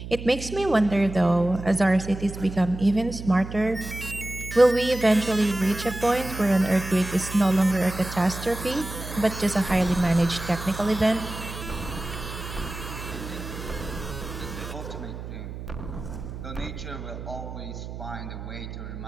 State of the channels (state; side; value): noise; right; hum, 10 dB below the sound